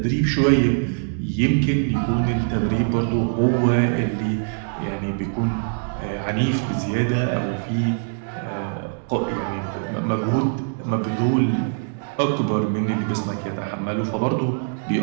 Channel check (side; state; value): left; silent; digital silence